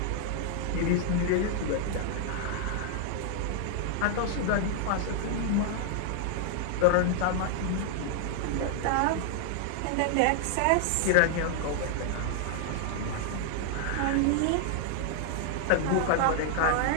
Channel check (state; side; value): different; both; correlation 0.00